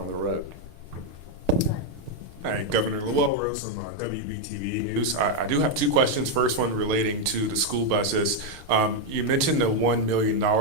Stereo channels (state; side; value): late; left; 6.6 ms